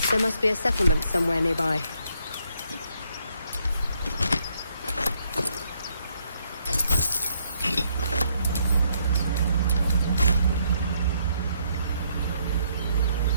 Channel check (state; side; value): inverted; both; correlation -0.72